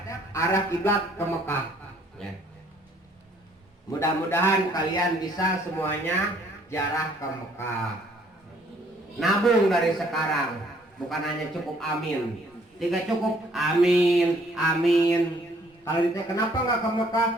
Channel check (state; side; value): normal; both; correlation 0.62